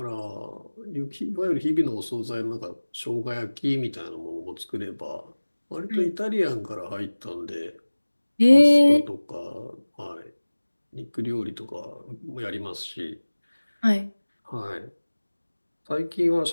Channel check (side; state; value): both; inverted; correlation -1.00